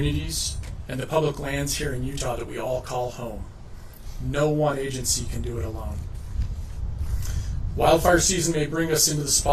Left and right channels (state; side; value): identical; both; correlation 1.00